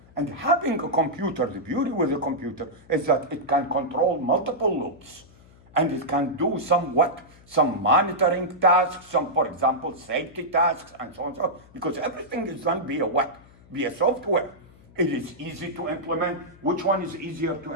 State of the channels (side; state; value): left; noise; hum, 25 dB below the sound